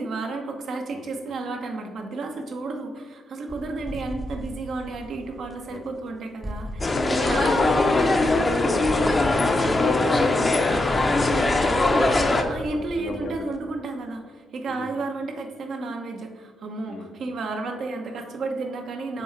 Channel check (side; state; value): both; normal; correlation 0.84